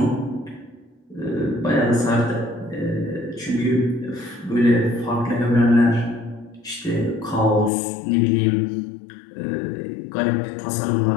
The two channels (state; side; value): drops out; right; at 7.7 s